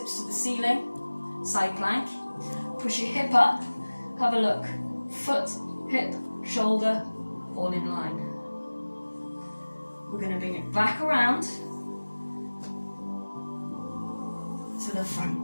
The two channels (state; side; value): inverted; both; correlation -1.00